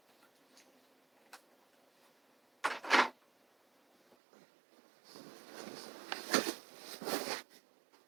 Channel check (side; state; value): left; drops out; at 4.2 s